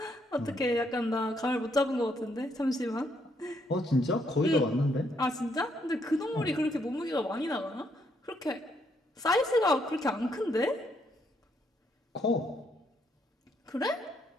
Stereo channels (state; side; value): normal; both; correlation 0.74